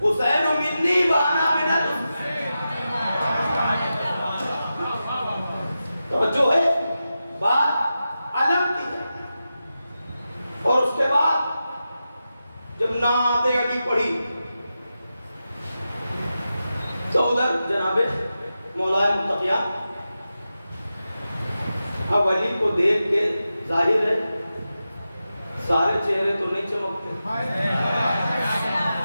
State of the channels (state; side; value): inverted; both; correlation -0.91